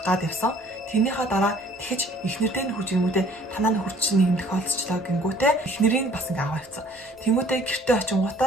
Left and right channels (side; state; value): both; normal; correlation 0.55